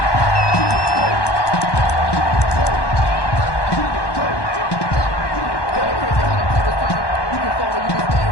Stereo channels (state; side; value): late; right; 1.1 ms